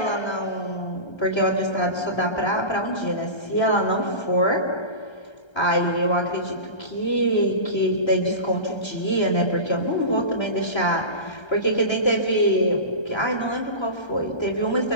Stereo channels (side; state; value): right; late; 1.3 ms